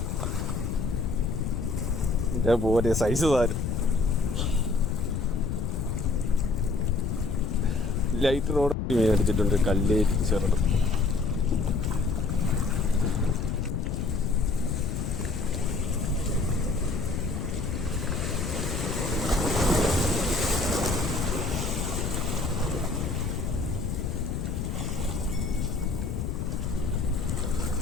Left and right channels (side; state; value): left; noise; rumble, 2 dB below the sound